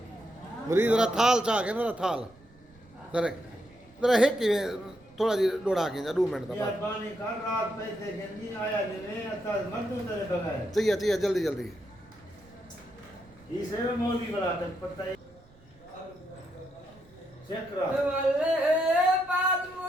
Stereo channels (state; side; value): noise; right; rumble, 27 dB below the sound